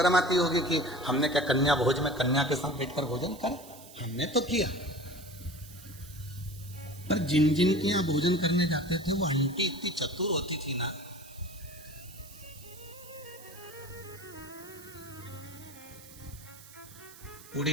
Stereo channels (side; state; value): right; noise; hiss, 19 dB below the sound